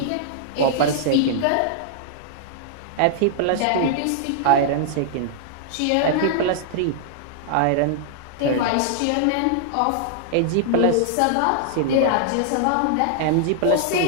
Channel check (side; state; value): both; different; correlation -0.01